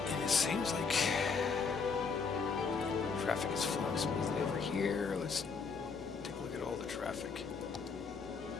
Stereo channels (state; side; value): quieter; right; 5.2 dB